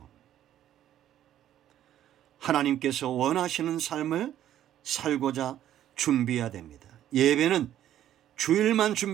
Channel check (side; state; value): left; quieter; 11.7 dB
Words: 하나님께서 원하시는 삶을 살고자 준비해야 됩니다. 예배는 주일만